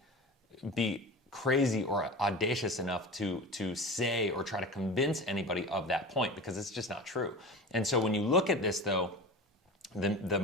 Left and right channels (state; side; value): normal; both; correlation 0.32